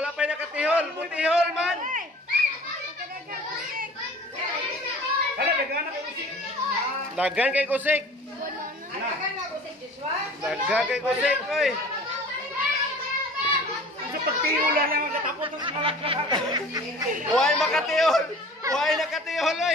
pa'y nakatihol. Butihol man. Dagan kay kusik. Dagan kay kusik, oy. Sa pagtihula lang ang katapos ng malakad. Huwag makatihol. Huwag nakatihol,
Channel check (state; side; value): normal; both; correlation 0.44